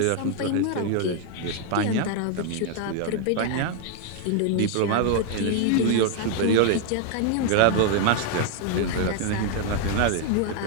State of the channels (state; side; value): different; both; correlation 0.00